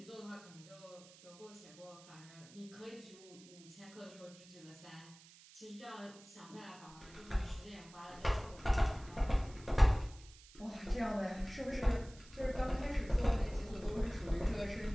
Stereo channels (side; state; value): right; noise; hiss, 21 dB below the sound